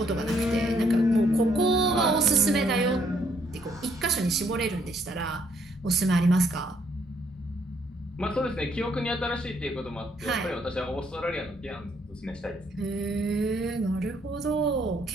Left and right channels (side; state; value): both; normal; correlation 0.69